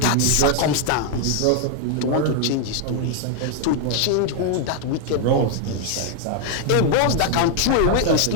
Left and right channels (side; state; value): both; different; correlation 0.00